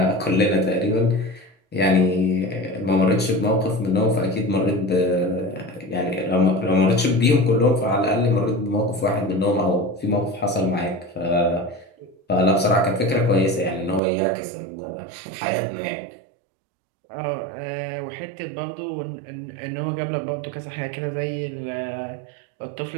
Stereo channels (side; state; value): left; drops out; at 14.0 s